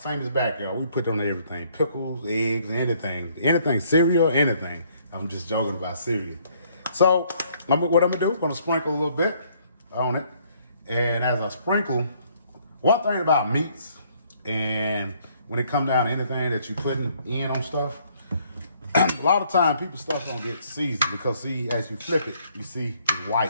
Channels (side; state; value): both; inverted; correlation -0.65